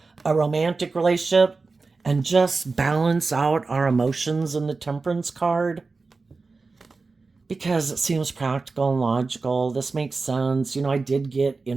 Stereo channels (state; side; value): quieter; left; 4.0 dB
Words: a romantic relationship, and just balance out our emotions in the Temperance card? Because it seems practical and logical. This makes sense. I did get in